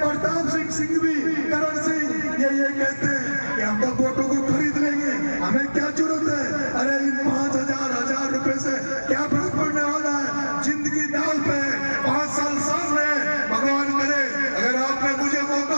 प्रताप सिंह सिंघवी, करण सिंह ये कहते हैं कि हम तो वोटों को खरीद लेंगे, हमें क्या जरूरत है? अरे इन 5,000 रुपए से क्या फर्क पड़ने वाला है? जिंदगी दाव पे 5 साल सामने, भगवान करे अगर आपने मुझे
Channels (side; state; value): both; inverted; correlation -1.00